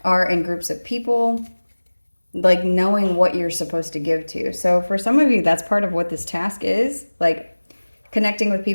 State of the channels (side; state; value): both; inverted; correlation -1.00